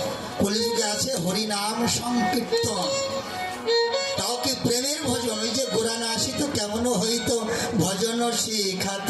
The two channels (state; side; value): identical; both; correlation 1.00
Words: কলিযুগে আছে হরিনাম সংকীর্তন, তাও কি প্রেমের ভজন? ওই যে গোরানা আসিত কেমন হইত ভজন শিখাত